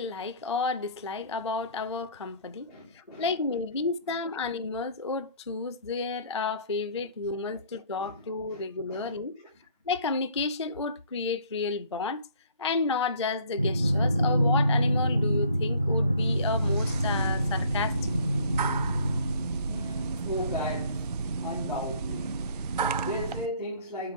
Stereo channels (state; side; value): inverted; both; correlation -0.55